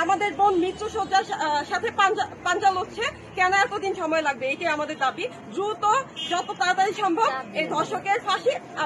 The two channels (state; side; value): identical; both; correlation 1.00